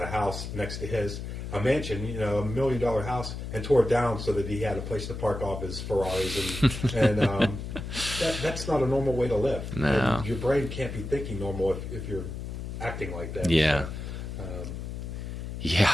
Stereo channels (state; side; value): noise; left; hum, 7 dB below the sound